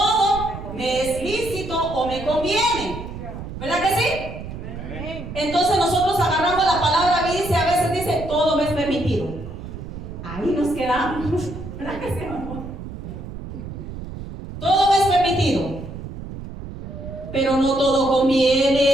me es lícito o me conviene, ¿verdad que sí? Amén. Entonces nosotros agarramos la palabra y a veces dice, todo me es permitido. Ahí nos quedamos, ¿verdad que sí? pero no todo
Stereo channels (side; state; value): right; noise; rumble, 10 dB below the sound